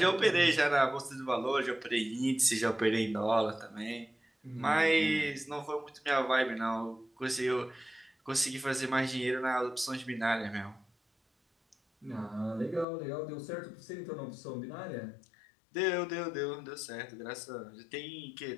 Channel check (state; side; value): drops out; right; at 12.9 s